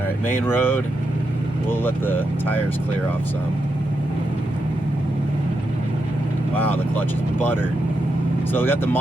right, main road. We'll let the tires clear off some. Wow, the clutch is buttered. So we got the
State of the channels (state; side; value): normal; both; correlation 0.84